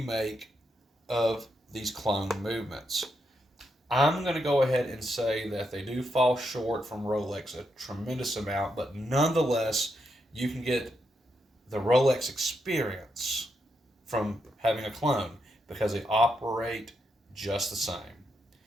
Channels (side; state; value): both; normal; correlation 0.82